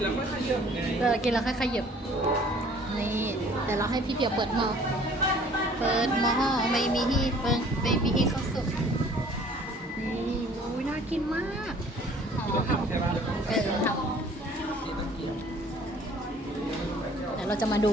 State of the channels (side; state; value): both; normal; correlation 0.54